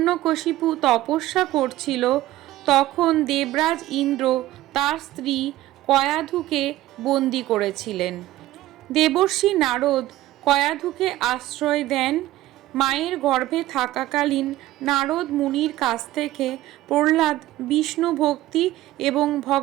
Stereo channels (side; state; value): left; quieter; 15.8 dB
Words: তপস্যা করছিল, তখন দেবরাজ ইন্দ্র তার স্ত্রী কয়াধুকে বন্দি করেছিলেন। দেবর্ষি নারদ কয়াধুকে আশ্রয় দেন। মায়ের গর্ভে থাকাকালীন নারদ মুনির কাছ থেকে প্রহ্লাদ বিষ্ণু ভক্তি এবং